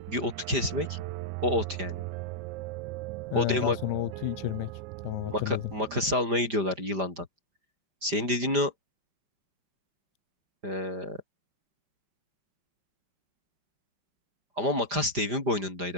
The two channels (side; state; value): left; late; 5.0 ms